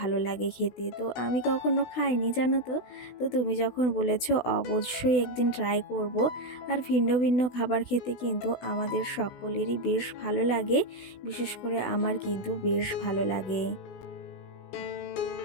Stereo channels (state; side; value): late; right; 16 ms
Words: লাগে খেতে। তো আমি কখনো খাইনি জানো তো। তো তুমি যখন বলেছো অবশ্যই একদিন ট্রাই করব। আর ভিন্ন ভিন্ন খাবার খেতে কিন্তু আমাদের সকলেরই বেশ ভালো লাগে, বিশেষ করে আমার কিন্তু বেশ ভালো লাগে।